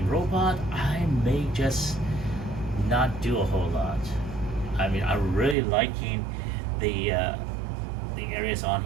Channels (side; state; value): left; drops out; at 5.6 s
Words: robot, I may just not do a whole lot. I mean, I'm really liking the areas on